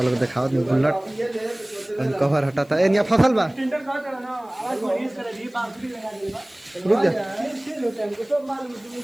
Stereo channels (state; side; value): noise; left; hiss, 29 dB below the sound